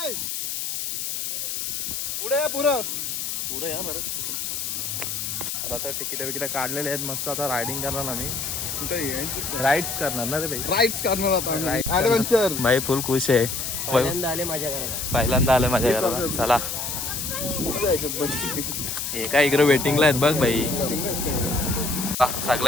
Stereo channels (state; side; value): noise; left; hiss, 3 dB below the sound